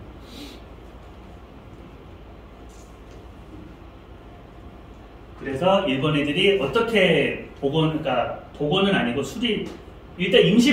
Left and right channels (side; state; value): both; identical; correlation 1.00